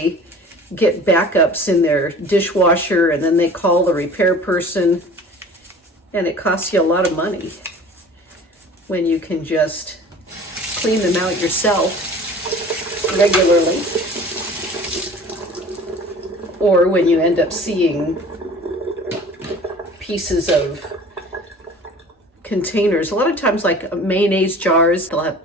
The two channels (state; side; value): normal; both; correlation 0.44